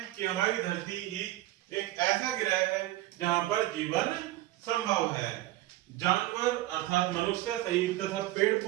कि हमारी धरती ही एक ऐसा ग्रह है जहां पर जीवन संभव है। जानवर अर्थात मनुष्य सहित तथा पेड़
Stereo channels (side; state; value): left; quieter; 16.5 dB